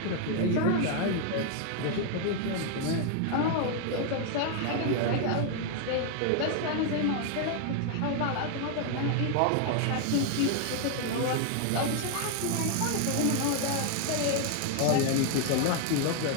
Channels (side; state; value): both; different; correlation 0.00